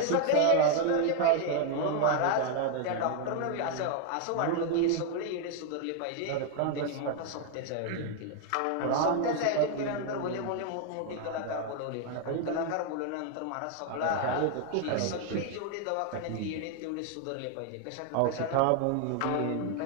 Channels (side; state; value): both; different; correlation 0.00